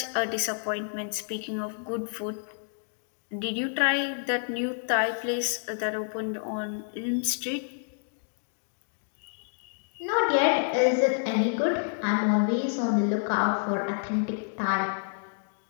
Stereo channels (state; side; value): silent; right; digital silence